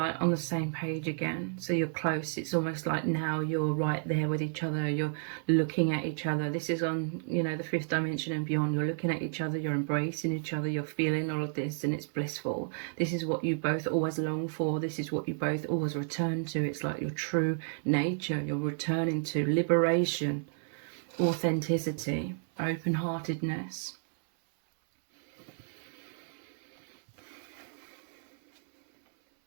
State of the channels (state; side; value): silent; left; 57 dB below the other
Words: on the same page again, so you're close. It's almost like now you're right there with each other. You're looking at each other. This is on, you know, the 5th dimension and beyond. You're looking at each other, you're embracing each other, you're feeling all of this, and it's blissful. This is what you both always long for. This is what you both always return to. It's like your true nature. You're returning to liberation, authenticity, open-heartedness.